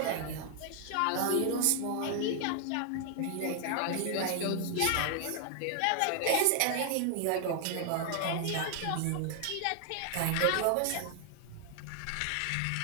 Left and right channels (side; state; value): both; different; correlation 0.00